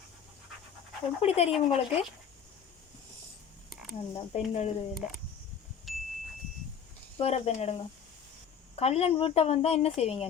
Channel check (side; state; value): right; quieter; 7.6 dB